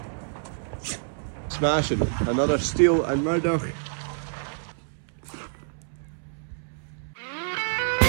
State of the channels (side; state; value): left; silent; 60 dB below the other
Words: Smashing. Another Steel and Murdoch.